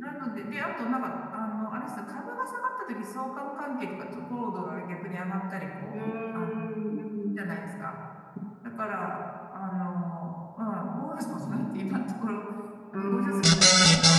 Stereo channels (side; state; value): both; identical; correlation 1.00